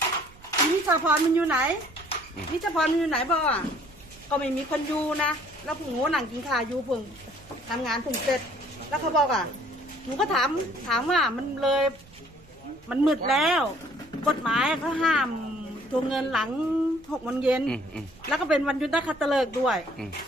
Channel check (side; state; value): right; noise; rumble, 24 dB below the sound